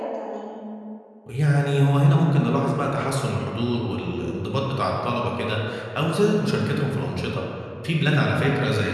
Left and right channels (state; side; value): identical; both; correlation 1.00